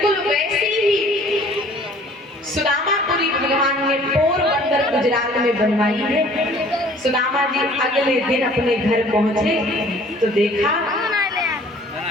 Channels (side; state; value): both; normal; correlation 0.53